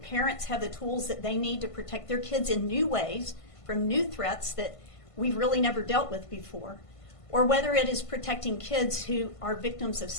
have the tools that they need to protect their kids in new ways from new threats that we've really never dealt with before, or whether it is protecting kids who are victims of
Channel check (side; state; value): right; late; 1.5 ms